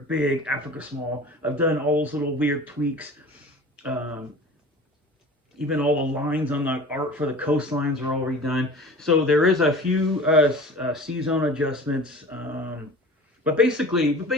big, Africa small. I've done all those little weird tweaks. Even all the lines on the art for the coastlines are already done. So there is a few sea zone adjustments, but basically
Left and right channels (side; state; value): both; normal; correlation 0.40